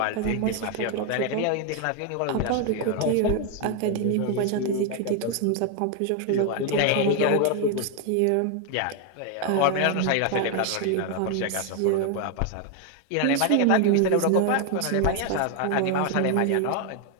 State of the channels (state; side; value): different; both; correlation 0.01